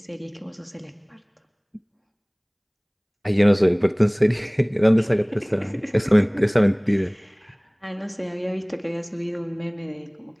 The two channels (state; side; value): identical; both; correlation 1.00